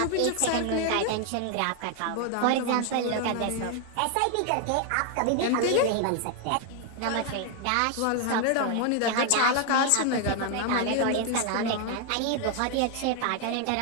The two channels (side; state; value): both; different; correlation 0.01